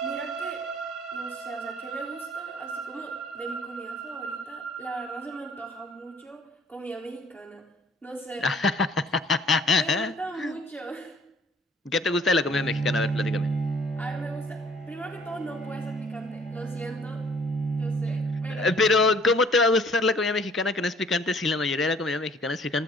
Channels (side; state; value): both; normal; correlation 0.57